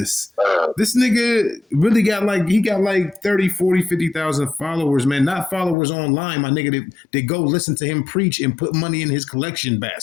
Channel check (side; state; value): right; drops out; at 5.8 s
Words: This nigga really got like 30, 40, 50,000 followers, man. Not followers online, my nigga. They go listen to him preach and put money in his collection